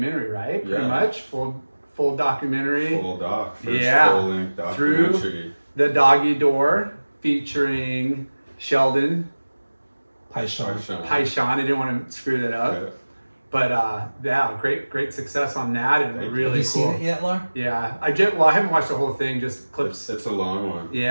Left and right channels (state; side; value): inverted; both; correlation -1.00